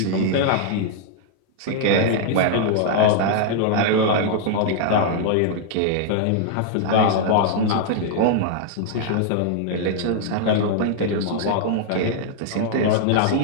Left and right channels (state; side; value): different; both; correlation -0.01